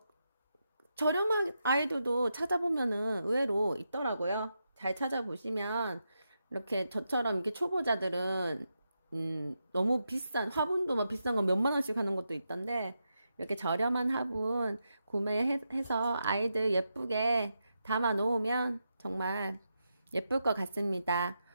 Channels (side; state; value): both; inverted; correlation -0.86